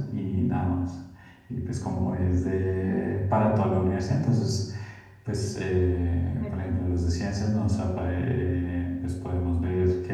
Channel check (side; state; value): both; identical; correlation 1.00